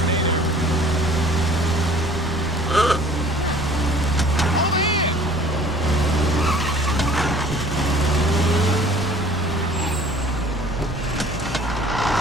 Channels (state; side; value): noise; right; rumble, 13 dB below the sound